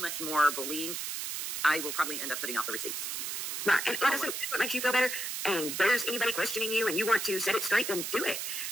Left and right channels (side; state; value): right; noise; hiss, 3 dB below the sound